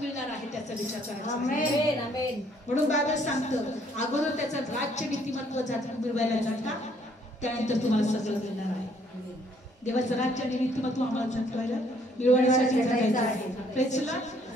आहे त्याचा विचार करायचा. म्हणून बायबल सांगतं, अगोदर त्याचं राज्य नीतिमत्व मिळवायला जाता, त्यानंतर तुम्हाला सगळं मिळणार आहे. देवाचं राज्य आणि नीतिमत्व आम्हाला जगवायला मिळवण्यासाठी जगायचं आहे. प्रेझला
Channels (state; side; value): normal; both; correlation 0.65